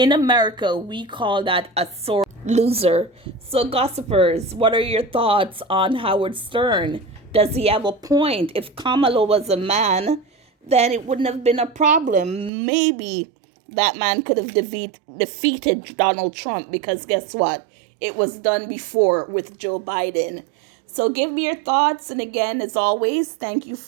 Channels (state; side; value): drops out; left; at 12.5 s